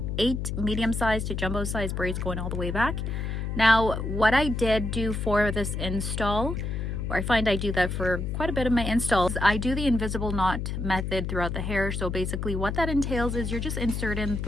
8 medium-sized to jumbo-sized braids going all the way back. Now, what I did do for this install, or I find I do that for quite a bit of my installs, I do the invisible knot method throughout the hair. So basically what that entails is you're just inserting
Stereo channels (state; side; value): noise; left; hum, 3 dB below the sound